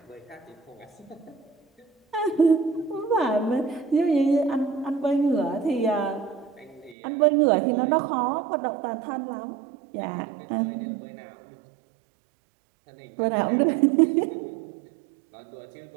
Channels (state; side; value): drops out; left; at 7.0 s